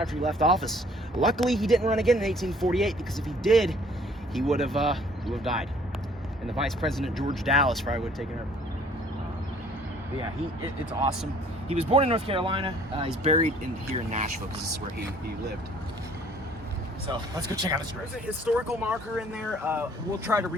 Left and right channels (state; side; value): normal; both; correlation 0.57